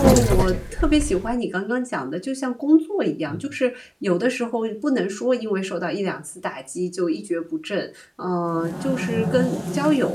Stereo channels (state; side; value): identical; both; correlation 1.00